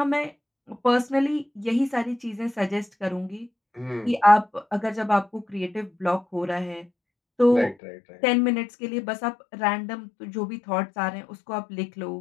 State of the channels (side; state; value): right; drops out; at 7.8 s